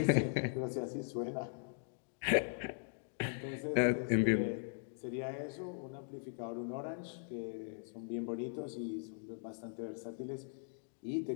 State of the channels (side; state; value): right; silent; digital silence